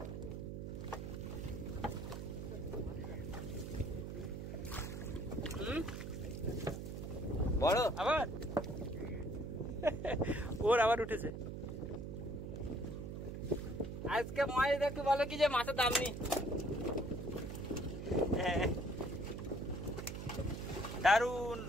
বড় আবার ওর আবার উঠেছে। আজকে মাছ দেখতে বলো কি যে মাছের দাম নেই। হ্যাঁ, দারুণ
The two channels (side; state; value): right; noise; hum, 6 dB below the sound